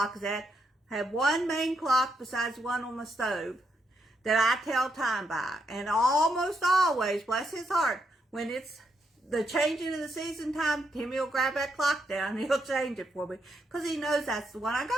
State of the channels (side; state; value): both; normal; correlation 0.79